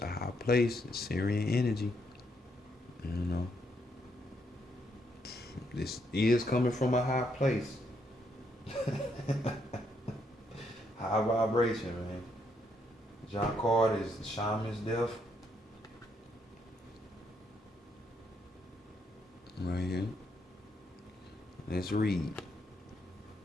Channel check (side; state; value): both; normal; correlation 0.75